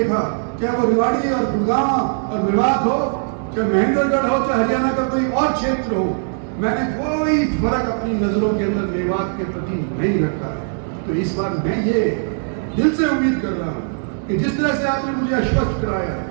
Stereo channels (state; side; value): silent; left; digital silence